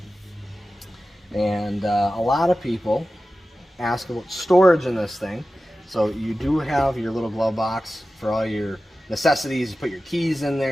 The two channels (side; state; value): both; normal; correlation 0.94